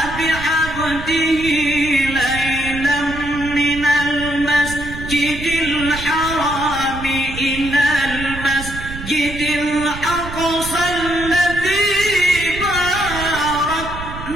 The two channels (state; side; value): noise; right; rumble, 10 dB below the sound